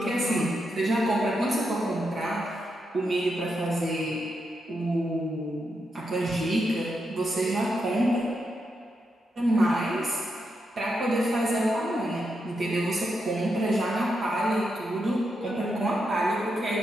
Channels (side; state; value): both; normal; correlation 0.84